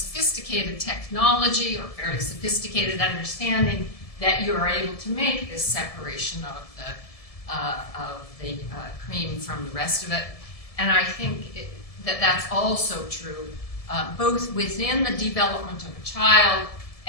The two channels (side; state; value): right; late; 1.7 ms